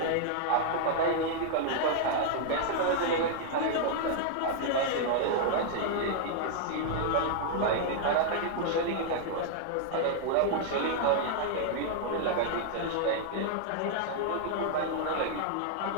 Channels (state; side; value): different; both; correlation -0.01